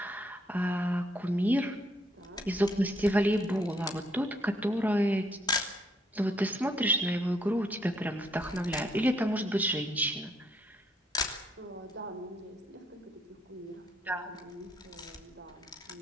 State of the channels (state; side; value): normal; both; correlation 0.71